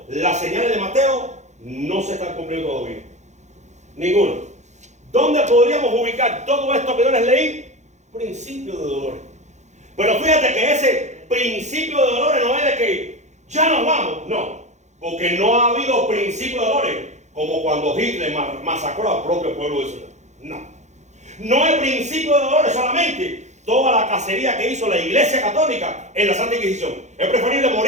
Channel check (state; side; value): late; left; 0.34 ms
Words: las señales de Mateo no se están cumpliendo todavía. Ninguno. ¿Dónde podríamos ubicar todo esto que yo les leí? Principio de dolores. Pero fíjate que ese principio de dolores no es de que ya nos vamos, no, porque no ha habido principio de dolores como cuando Hitler masacró al propio pueblo de Israel. No es principio de dolores solamente toda la cacería que hizo la Iglesia Católica en la Santa Inquisición. Es preferible